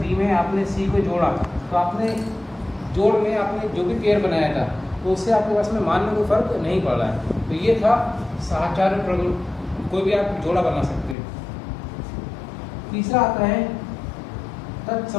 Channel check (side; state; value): right; drops out; at 11.2 s